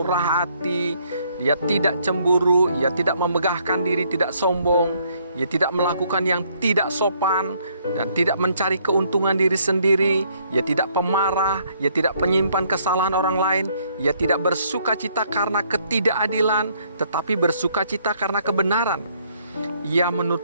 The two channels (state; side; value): inverted; both; correlation -0.67